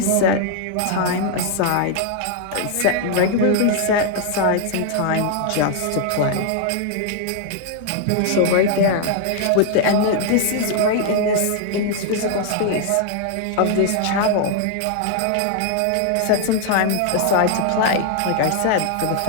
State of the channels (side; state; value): both; different; correlation 0.00